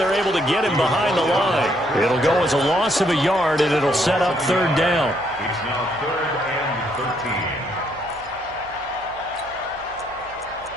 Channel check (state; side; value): noise; right; hum, 23 dB below the sound